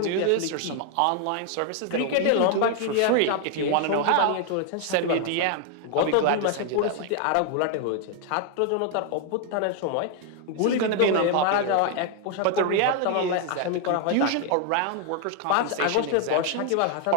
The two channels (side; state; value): both; different; correlation 0.00